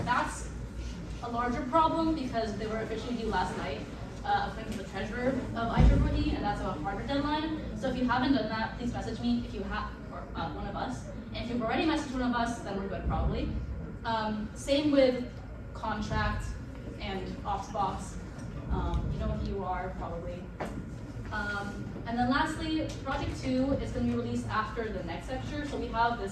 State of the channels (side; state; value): both; identical; correlation 1.00